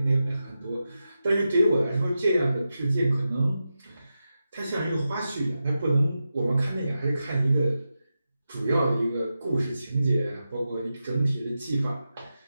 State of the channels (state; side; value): inverted; both; correlation -0.90